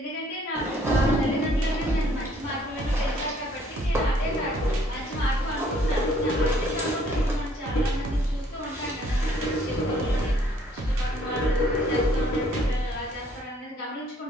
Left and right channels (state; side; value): normal; both; correlation 0.62